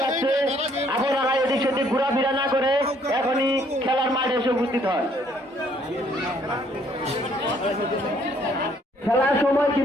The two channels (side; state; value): both; normal; correlation 0.65